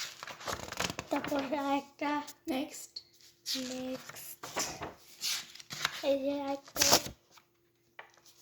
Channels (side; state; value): both; identical; correlation 1.00